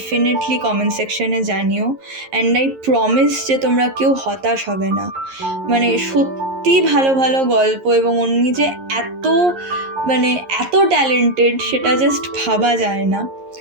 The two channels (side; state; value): left; late; 11 ms